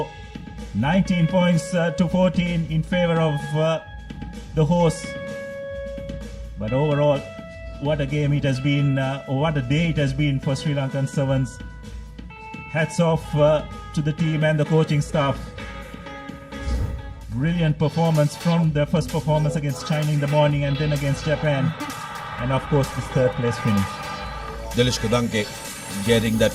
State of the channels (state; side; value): identical; both; correlation 1.00